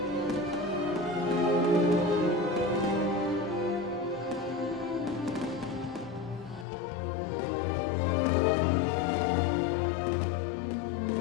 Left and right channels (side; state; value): right; drops out; at 6.7 s